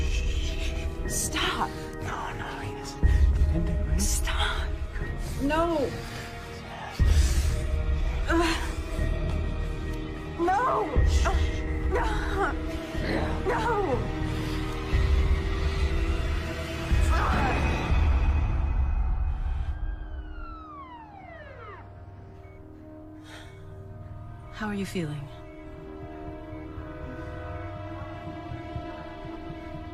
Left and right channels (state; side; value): identical; both; correlation 1.00